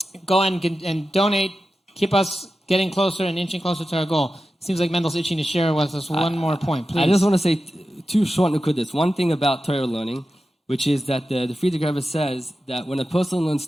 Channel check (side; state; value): both; normal; correlation 0.92